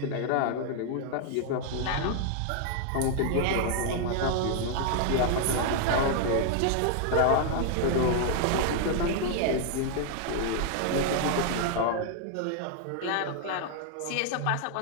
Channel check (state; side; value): different; both; correlation 0.00